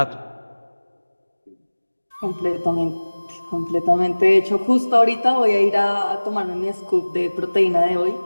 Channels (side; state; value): both; inverted; correlation -1.00